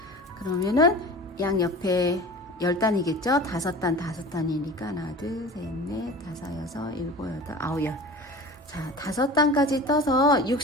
그러면은 양 옆에 10단이겠죠? 5단, 5단이니까 하나, 둘, 셋, 넷, 5, 6, 7, 8, 9, 10. 자, 5단까지 떠서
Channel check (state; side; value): normal; both; correlation 0.37